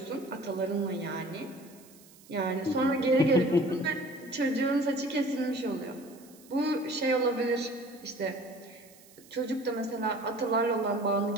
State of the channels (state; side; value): noise; right; hiss, 24 dB below the sound